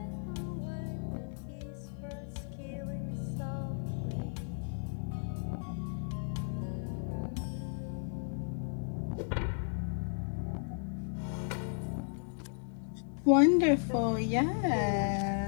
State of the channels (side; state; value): right; silent; digital silence